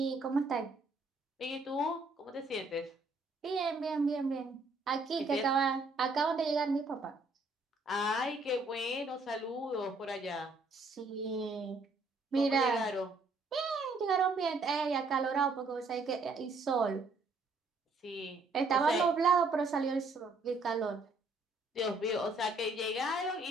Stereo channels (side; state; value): left; quieter; 3.3 dB